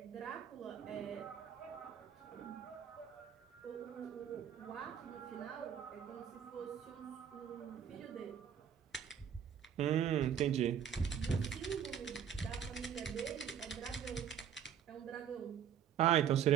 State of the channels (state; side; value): quieter; left; 8.8 dB